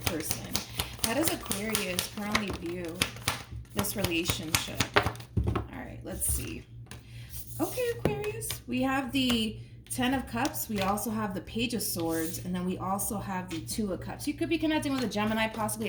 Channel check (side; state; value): both; identical; correlation 1.00